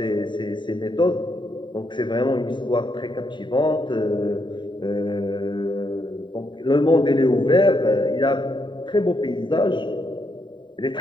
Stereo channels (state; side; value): late; right; 0.23 ms